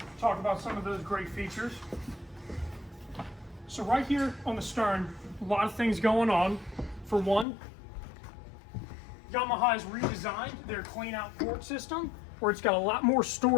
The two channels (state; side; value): drops out; right; at 7.5 s